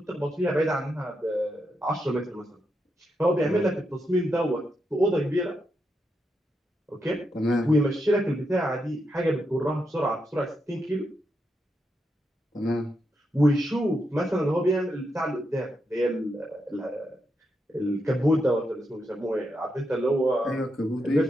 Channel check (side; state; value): both; normal; correlation 0.83